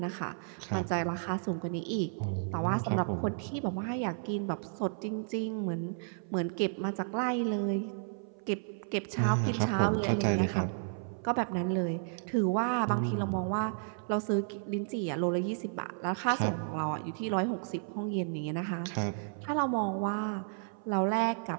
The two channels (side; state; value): left; silent; 56 dB below the other